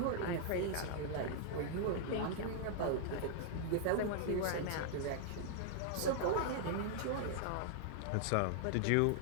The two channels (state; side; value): different; both; correlation -0.01